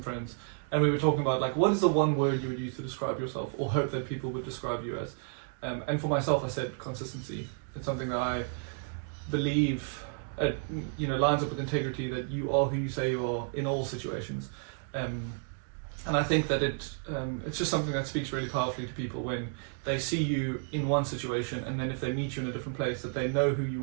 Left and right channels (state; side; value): silent; left; 57 dB below the other